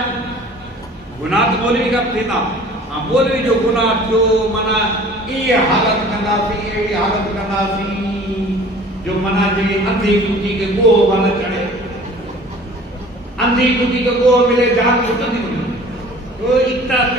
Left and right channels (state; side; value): normal; both; correlation 0.47